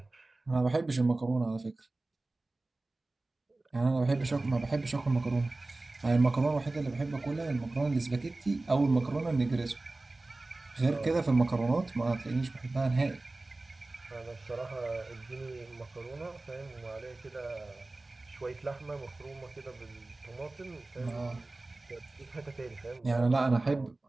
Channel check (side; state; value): left; quieter; 3.0 dB